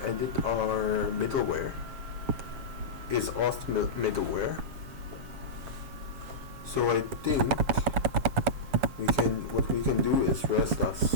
our middleware. Is auth middleware. So I think what we can do is rest us.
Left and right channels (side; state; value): left; late; 7.4 ms